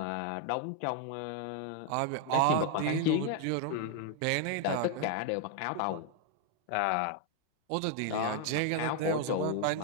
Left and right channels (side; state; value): both; different; correlation 0.01